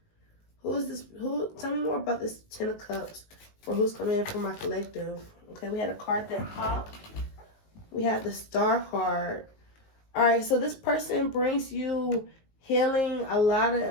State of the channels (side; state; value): right; late; 19 ms